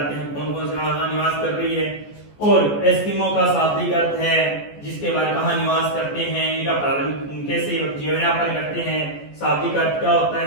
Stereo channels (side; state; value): right; late; 14 ms